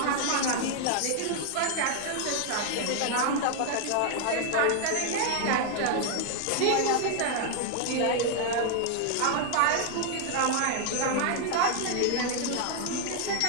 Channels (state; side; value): different; both; correlation 0.00